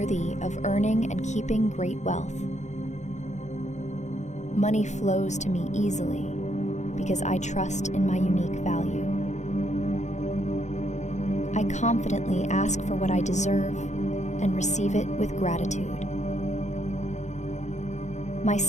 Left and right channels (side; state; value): right; late; 0.34 ms